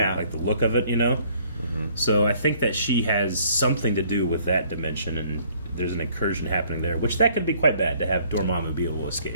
Like the look of it, you know? So I think that she has something to do with that dimension, and there's an incursion happening there, which that could be quite bad to have Dormammu be able to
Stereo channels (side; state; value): both; inverted; correlation -0.60